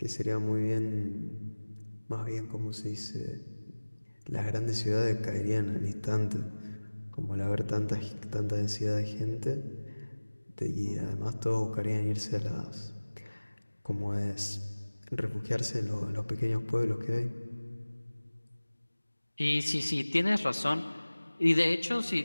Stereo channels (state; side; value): inverted; both; correlation -1.00